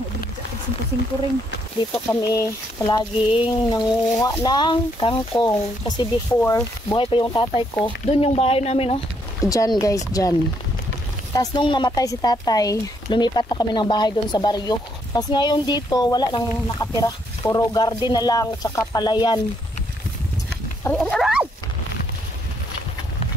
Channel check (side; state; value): both; normal; correlation 0.73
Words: 5 ring. Dito kami palaging nanguha ng kangkong. Kasi before, buhay pa yung tatay ko. Doon yung bahay namin, oh. Diyan guys, diyan. Tapos nung namatay si tatay, lumipat na kami ng bahay doon sa baryo. Tapos ngayon dito, wala nang nakatira. Puro garden na lang, tsaka palayan. Aray!